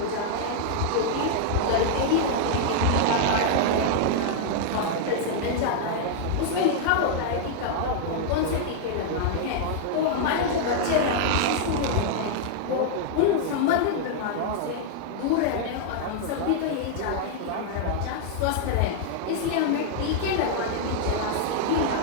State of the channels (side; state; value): both; different; correlation -0.01